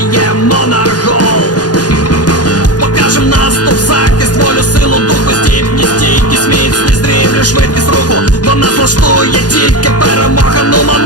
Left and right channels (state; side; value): late; right; 0.69 ms